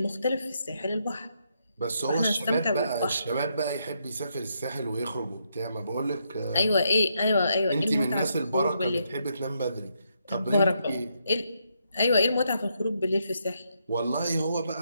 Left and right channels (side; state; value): both; inverted; correlation -0.78